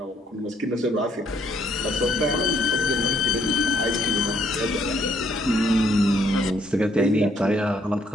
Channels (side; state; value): both; normal; correlation 0.69